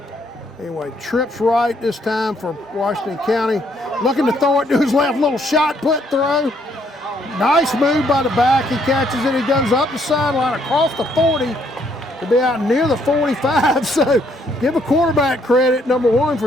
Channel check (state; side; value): normal; both; correlation 0.69